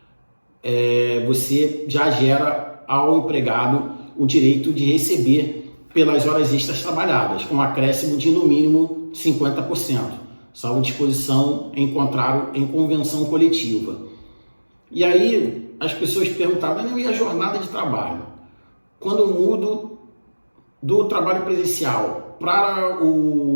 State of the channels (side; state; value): both; inverted; correlation -1.00